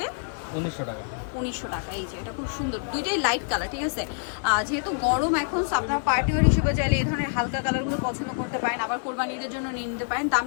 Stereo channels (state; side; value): silent; right; digital silence